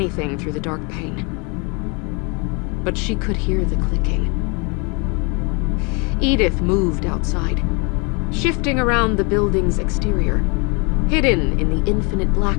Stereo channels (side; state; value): right; quieter; 31.4 dB